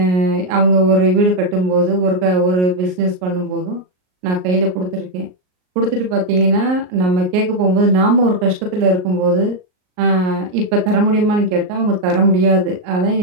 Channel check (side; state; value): left; late; 38 ms